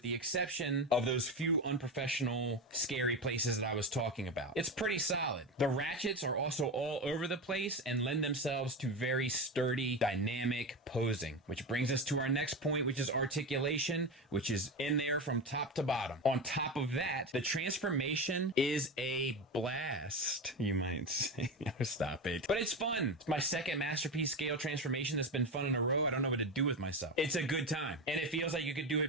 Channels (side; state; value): both; normal; correlation 0.20